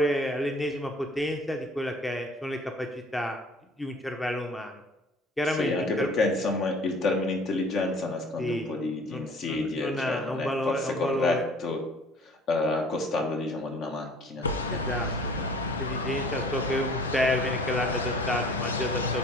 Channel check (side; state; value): both; normal; correlation 0.50